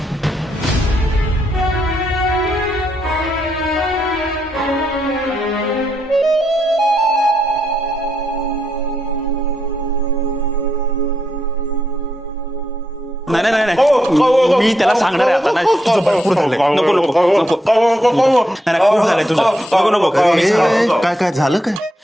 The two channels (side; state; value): both; normal; correlation 0.80